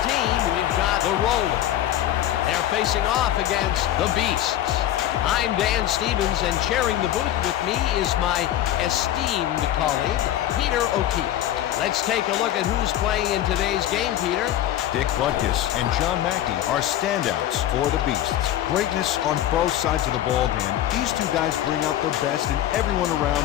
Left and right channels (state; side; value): quieter; right; 12.5 dB